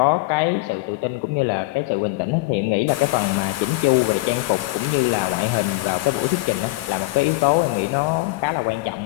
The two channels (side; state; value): right; quieter; 21.4 dB